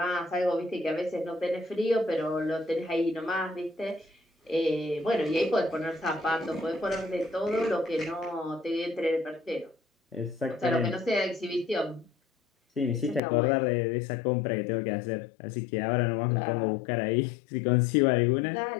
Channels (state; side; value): drops out; right; at 13.2 s